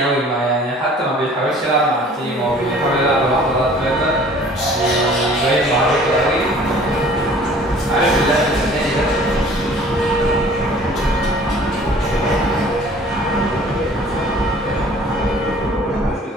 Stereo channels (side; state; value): both; normal; correlation 0.51